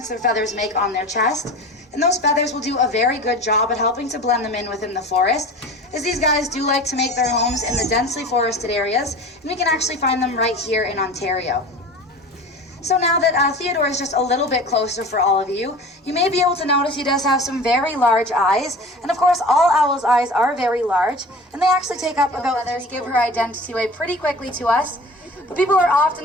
their feathers make on their chest. And those feathers will do a very good job at helping to blend them in within the forest, as these guys do like to make their homes in the densely forested areas, and we can actually find them right here in Ontario. So now that Theodore is just a little bit closer for all of you, you may be able to notice he does have some very large eyes. And of course, all owls' eyes are very large, and they actually take up about feathers, give her identity away pretty quickly to us. But people are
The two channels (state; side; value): normal; both; correlation 0.38